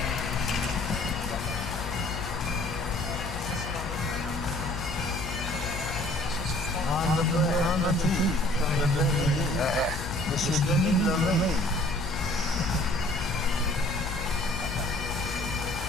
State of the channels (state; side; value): noise; left; hum, 8 dB below the sound